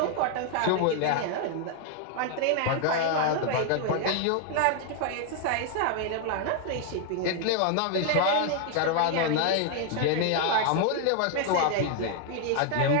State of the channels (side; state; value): both; different; correlation 0.00